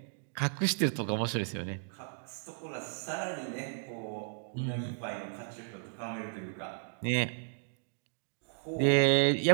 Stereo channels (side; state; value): left; silent; digital silence